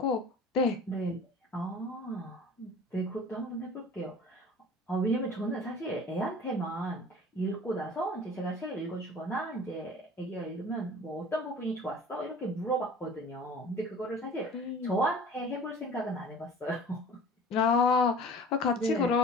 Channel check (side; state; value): both; normal; correlation 0.43